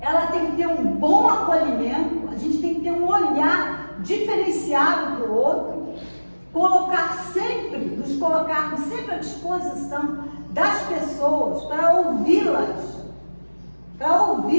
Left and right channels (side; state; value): both; inverted; correlation -1.00